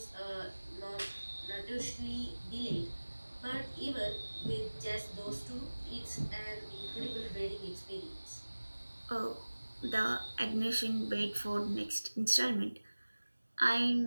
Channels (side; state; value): both; inverted; correlation -1.00